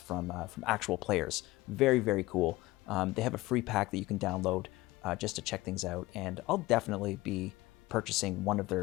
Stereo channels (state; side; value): quieter; right; 19.4 dB